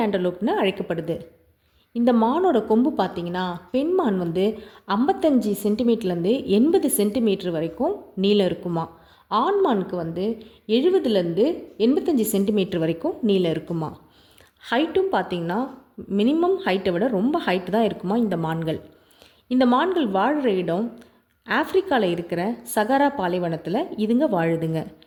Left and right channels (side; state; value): both; identical; correlation 1.00